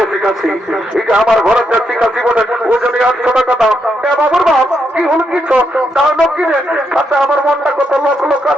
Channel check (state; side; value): normal; both; correlation 0.80